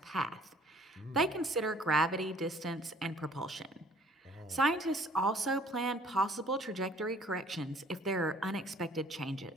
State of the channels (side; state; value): both; normal; correlation 0.56